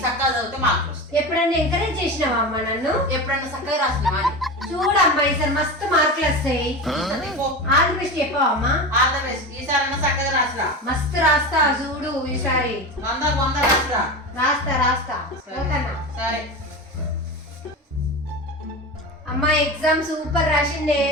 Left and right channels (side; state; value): both; normal; correlation 0.25